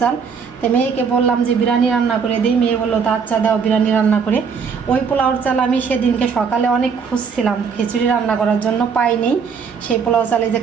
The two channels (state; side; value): quieter; left; 6.0 dB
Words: চাল। তো মেয়েকে বললাম যে বিরিয়ানি রান্না করে দিই, মেয়ে বললো তা আচ্ছা দাও বিরিয়ানি রান্না করে। ওই পোলাওর চাল আমি সেদিনকে সকালে অনেক খুঁজছিলাম খিচুড়ি রান্না করার জন্য, পাইনি। সেই পোলাও চালে যে